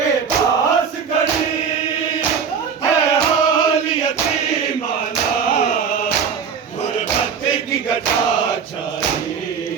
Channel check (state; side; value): quieter; left; 6.6 dB